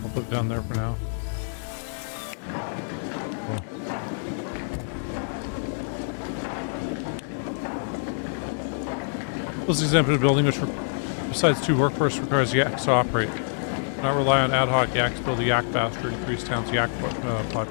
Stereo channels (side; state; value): right; silent; digital silence